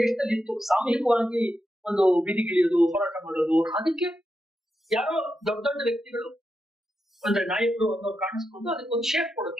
ದೇಶದಲ್ಲಿ ಇತ್ತು. ಸಾಮೂಹಿಕವಾಗಿ ಒಂದು ಬೀದಿಗಿಳಿಯೋದು, ಹೋರಾಟ ಮಾಡೋದು. ಅದಕ್ಕೆ ಯಾರೋ ದೊಡ್ಡ ದೊಡ್ಡ ವ್ಯಕ್ತಿಗಳು ಅಂದ್ರೆ ನಾಯಕರು ಅನ್ನೋರು ಕಾಣಿಸ್ಕೊಂಡು ಅದಕ್ಕೊಂದು ಶೇಪ್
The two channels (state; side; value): normal; both; correlation 0.87